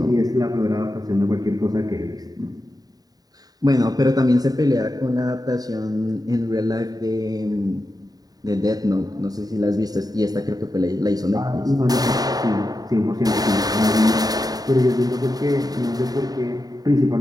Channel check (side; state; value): left; late; 0.18 ms